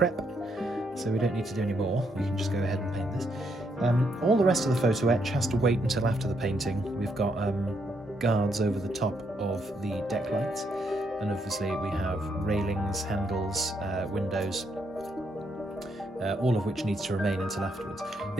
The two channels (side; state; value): both; normal; correlation 0.76